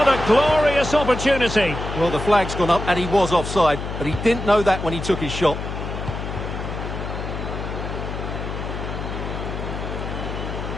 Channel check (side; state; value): left; noise; hum, 6 dB below the sound